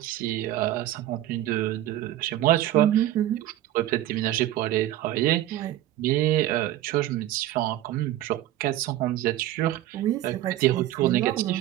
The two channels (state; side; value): quieter; left; 13.9 dB